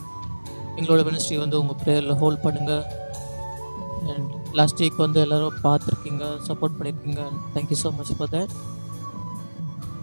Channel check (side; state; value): both; inverted; correlation -1.00